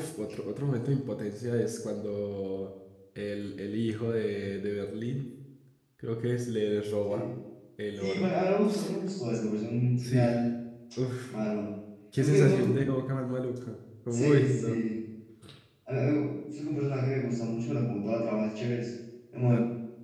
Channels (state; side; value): identical; both; correlation 1.00